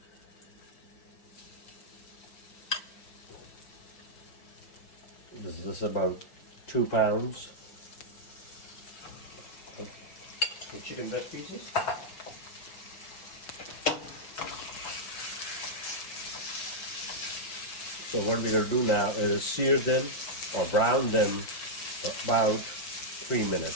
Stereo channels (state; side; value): late; right; 5.7 ms